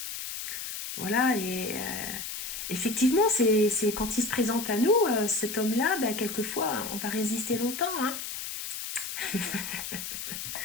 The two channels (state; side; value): noise; left; hiss, 6 dB below the sound